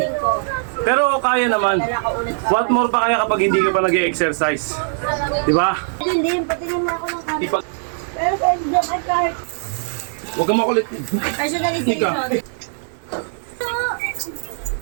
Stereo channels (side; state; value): left; silent; digital silence